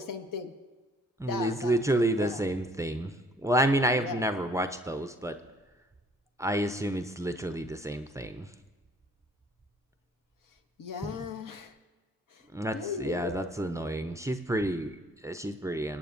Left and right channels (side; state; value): both; normal; correlation 0.59